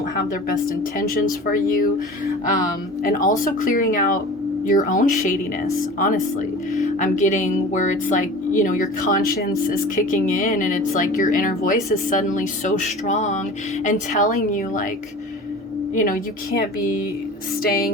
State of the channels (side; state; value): both; normal; correlation 0.38